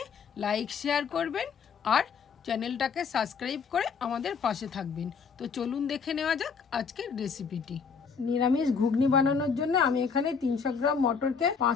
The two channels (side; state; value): right; quieter; 5.9 dB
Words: লাইক শেয়ার করবেন আর চ্যানেলটাকে সাবস্ক্রাইব করে আমাদের পাশে থাকবেন। তো চলুন দেখে নেওয়া যাক আজকের রেসিপিটি। নিরামিষ ঘুগনি বানানোর জন্য আমি এখানে 300 গ্রাম মটরকে 5